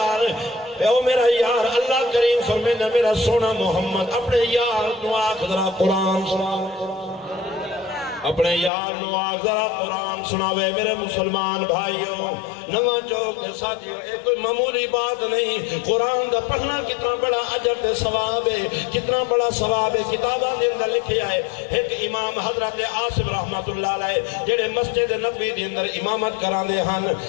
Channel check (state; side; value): drops out; right; at 8.7 s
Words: او میرا یار، اللہ کریم فرمائے میرا سونا محمد اپنے یار نو آکھ ذرا قرآن سنا، اپنے یار نو آکھ ذرا قرآن سناوے. میرے مسلمان بھائیوں، نواں چوک دے ساتھیوں، ایک کوئی معمولی بات نہیں. قرآن دا پڑھنا کتنا بڑا اجر تے ثواب ہے، کتنا بڑا ثواب ہے. کتاباں دے اندر لکھیا ہے ایک امام حضرت عاصم رحمت اللہ علیہ جڑے مسجد نبوی دے اندر امامت کراندے ہن،